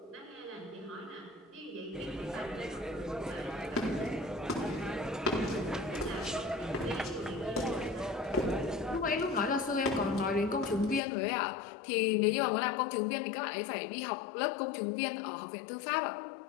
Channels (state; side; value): drops out; right; at 11.0 s